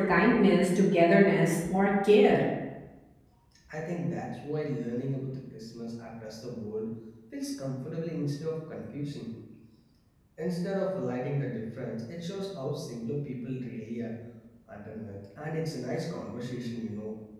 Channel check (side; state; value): both; identical; correlation 1.00